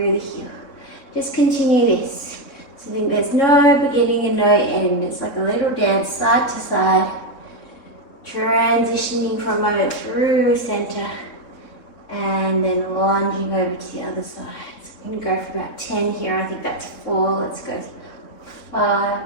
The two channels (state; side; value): late; right; 3.6 ms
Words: the heel. Just continue this. So I think there's no beginning and no end. It's like a little dance side to side, transitioning for a moment through center and then lunging over to the other side. So I'm going to go for about 10 here. I think that's 4. Let's go 5